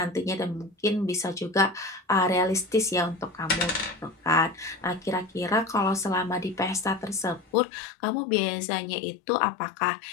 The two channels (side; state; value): right; drops out; at 7.5 s